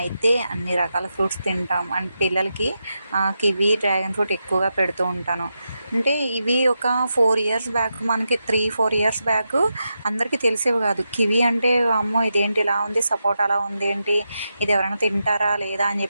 అన్ని రకాల ఫ్రూట్స్ తింటాం. అండ్ పిల్లలకి కివీ, డ్రాగన్ ఫ్రూట్ ఎక్కువగా పెడుతూ ఉంటాను. అంటే ఇవి ఒక 4 ఇయర్స్ బ్యాక్, మనకి 3-4 ఇయర్స్ బ్యాక్ అందరికీ తెలిసేవి కాదు. కివీ అంటే అమ్మో ఇదేంటి ఇలా ఉంది, సపోటా అలా ఉంది ఏంటి, ఇది ఎవరైనా తింటారా లేదా అని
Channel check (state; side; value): inverted; both; correlation -0.87